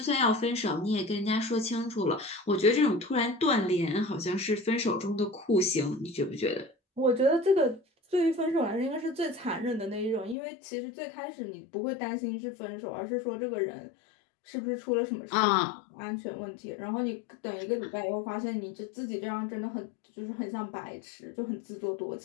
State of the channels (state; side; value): drops out; right; at 10.4 s